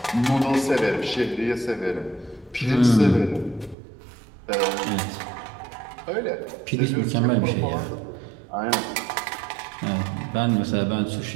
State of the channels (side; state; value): left; drops out; at 3.8 s